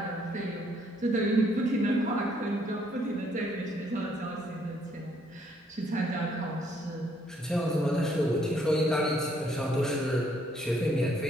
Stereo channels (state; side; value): normal; both; correlation 0.68